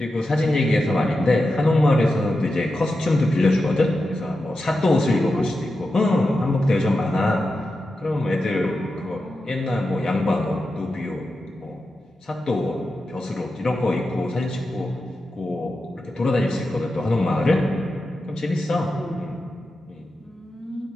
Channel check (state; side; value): normal; both; correlation 0.90